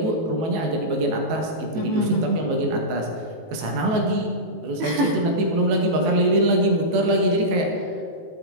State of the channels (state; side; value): late; left; 19 ms